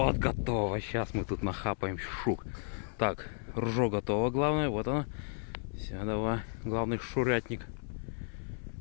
готово. Сейчас мы тут нахапаем шук. Так, ружо готово, главное. Вот оно. Все, давай. Главный шурятник.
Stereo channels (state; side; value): silent; right; 55 dB below the other